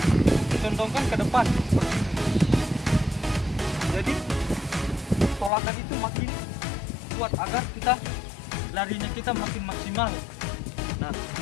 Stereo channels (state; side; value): drops out; right; at 5.5 s